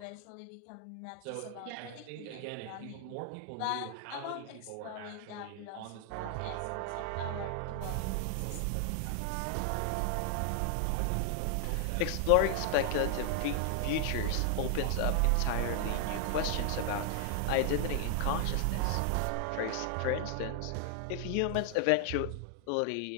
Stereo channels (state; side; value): different; both; correlation 0.00